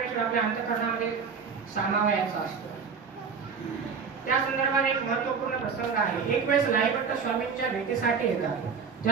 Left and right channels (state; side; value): quieter; left; 5.9 dB